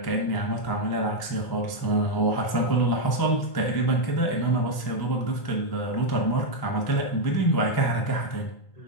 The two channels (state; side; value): late; right; 1.1 ms